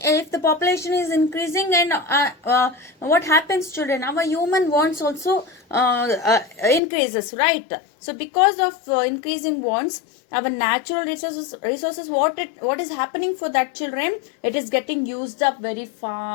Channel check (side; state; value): right; drops out; at 6.8 s